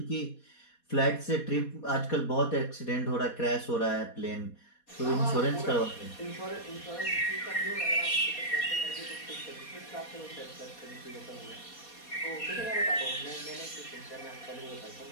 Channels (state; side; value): late; right; 4.2 ms